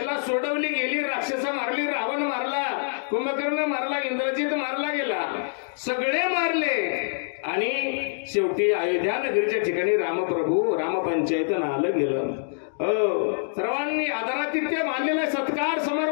सोडवली गेली, राक्षस मारली, रावण मारला, कुंभकर्ण मारला, इंद्रजित मारला गेला, सगळे मारले, आणि शेवटी अयोध्या नगरीच्या ठिकाणी रामप्रभू रामपंचायत आलं गेलं. सर्वांनी आदरातिथ्य मानलेला सत्कार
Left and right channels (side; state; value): right; silent; digital silence